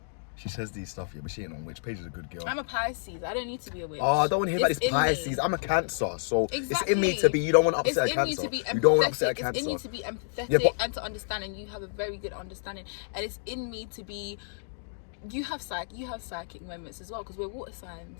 She says these stuff, yeah, but she ain't no witch. Paige is a good girl. I'm a Pisces. I don't need to be a witch. Oh, I don't want to hear about It's this in me. Pisces. I'm a Cancer, so Exactly. it's in me to be. You don't want to upset It's a in you Cancer. to be empathetic. You don't want to upset a Cancer. It's in you to be empathetic Yeah, but- and to understand, and you have a very good understanding. And it's in me to be. You have psychic moments as well because we're water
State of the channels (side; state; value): right; silent; digital silence